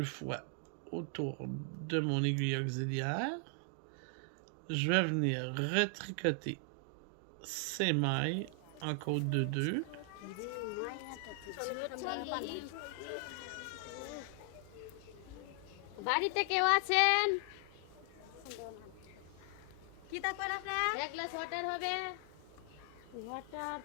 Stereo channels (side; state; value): both; different; correlation 0.00